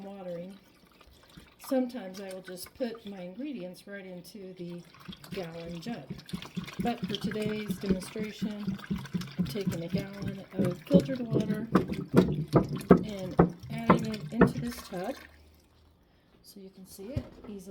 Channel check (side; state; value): both; identical; correlation 1.00